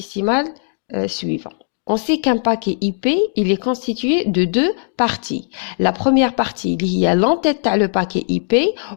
suivant. On sait qu'un paquet IP, il est constitué de 2 parties. La première partie, il y a l'entête à le paquet IP.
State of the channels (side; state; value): right; silent; digital silence